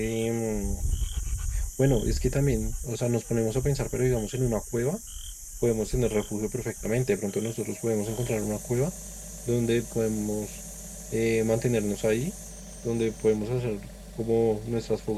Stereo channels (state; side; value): identical; both; correlation 1.00